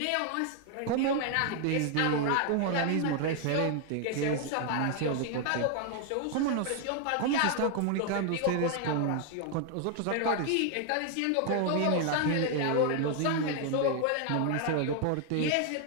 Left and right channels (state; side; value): different; both; correlation 0.00